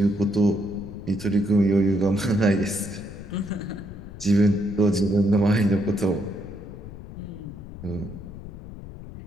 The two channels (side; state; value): left; noise; rumble, 13 dB below the sound